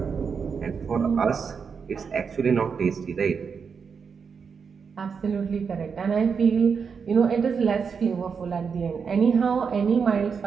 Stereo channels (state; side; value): quieter; left; 6.0 dB